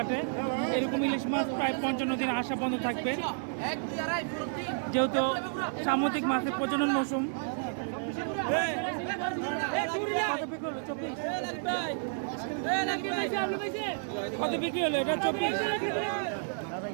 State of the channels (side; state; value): left; silent; digital silence